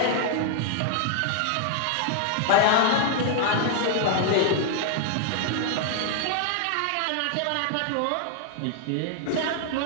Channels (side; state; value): both; different; correlation 0.00